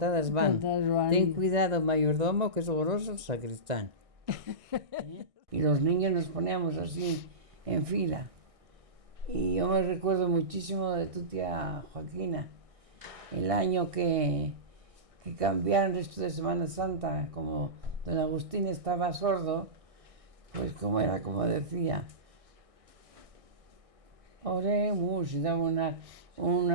van. Contadas van. Ten cuidado, mayordomo, que es goloso el sacristán. Y los niños nos poníamos así, en fila. Y yo me recuerdo muchísimo de tu tía Joaquina, el año que cambiaron esto de Semana Santa, como don Agustín estaba sordo, pues como era, como decía, oremos, y daba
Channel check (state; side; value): late; left; 1.6 ms